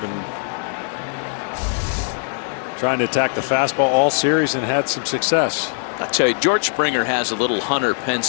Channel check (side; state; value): right; silent; 55 dB below the other